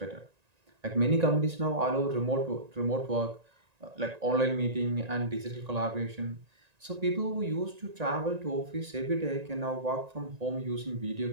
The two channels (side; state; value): left; late; 1.9 ms